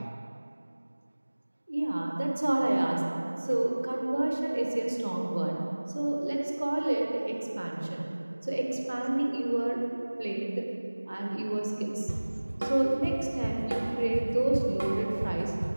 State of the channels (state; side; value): inverted; both; correlation -1.00